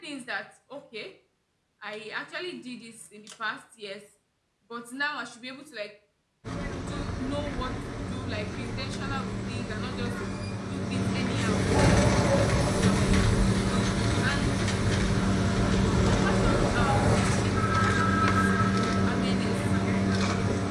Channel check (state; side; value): identical; both; correlation 1.00